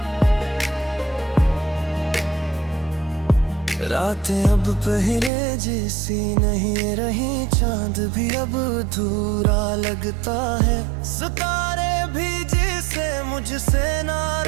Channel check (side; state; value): left; drops out; at 5.3 s